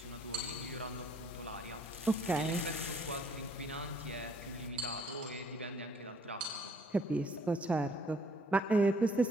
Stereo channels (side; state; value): both; normal; correlation 0.62